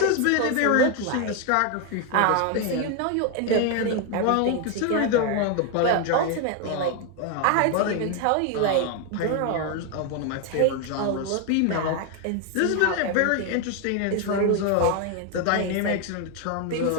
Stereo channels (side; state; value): both; different; correlation 0.01